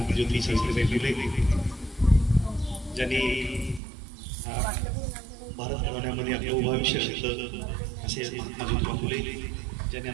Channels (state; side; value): drops out; left; at 3.8 s